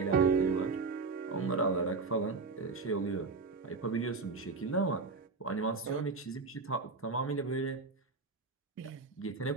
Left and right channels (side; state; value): left; quieter; 4.2 dB